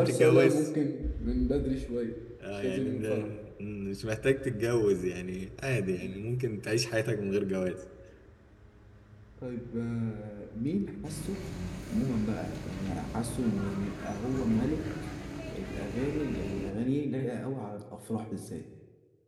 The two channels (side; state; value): both; identical; correlation 1.00